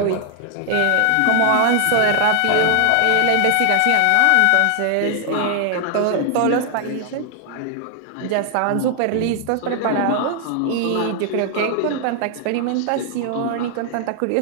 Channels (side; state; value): both; different; correlation 0.00